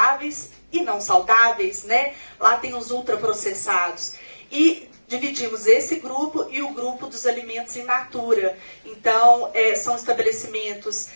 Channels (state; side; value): inverted; both; correlation -1.00